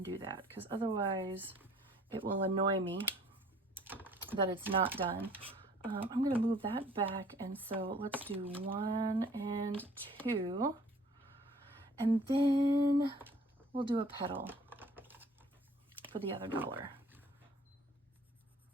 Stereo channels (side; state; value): both; normal; correlation 0.54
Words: do that, because otherwise it will annoy me that it's not done. I'm gonna move that back, and so let's do 1 and 2, and then we'll do a petal for the other $1.